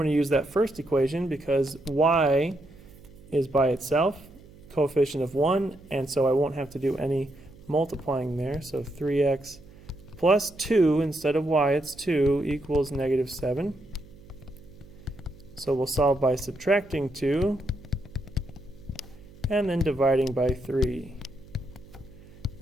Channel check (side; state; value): right; noise; hum, 22 dB below the sound